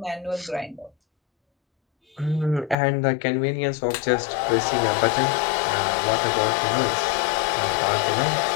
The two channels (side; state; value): right; drops out; at 2.8 s